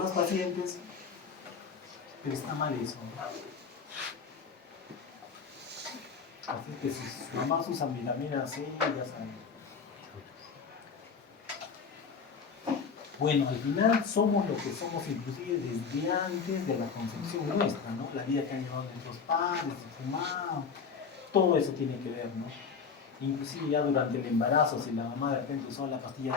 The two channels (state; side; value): quieter; right; 5.8 dB